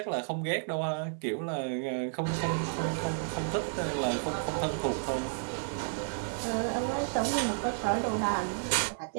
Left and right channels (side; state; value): left; silent; 57 dB below the other